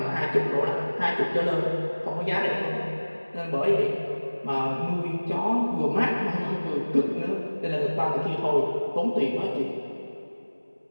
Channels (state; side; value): inverted; both; correlation -1.00